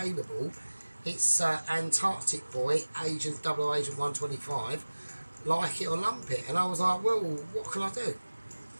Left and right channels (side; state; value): both; inverted; correlation -1.00